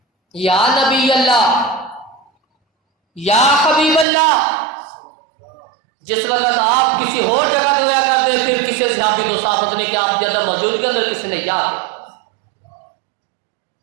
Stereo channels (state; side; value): drops out; left; at 4.0 s